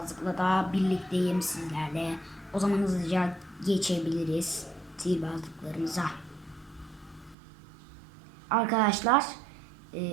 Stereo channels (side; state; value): left; drops out; at 7.4 s